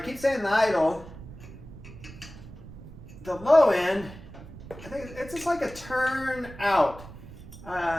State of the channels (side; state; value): right; noise; rumble, 15 dB below the sound